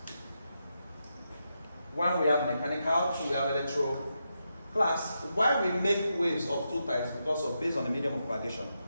One, we have mechanical, two, we have electro. Class, why we make waves of two types? Because of based on the medium of propagation.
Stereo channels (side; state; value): both; inverted; correlation -0.85